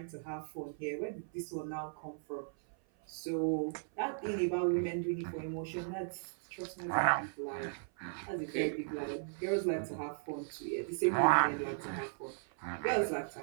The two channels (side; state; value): left; silent; 53 dB below the other